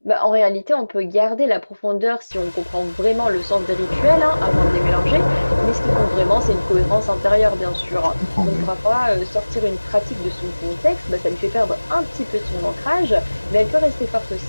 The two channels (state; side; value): inverted; both; correlation -1.00